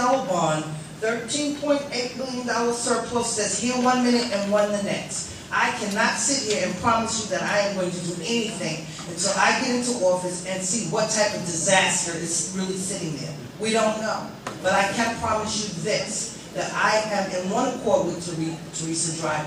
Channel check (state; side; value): identical; both; correlation 1.00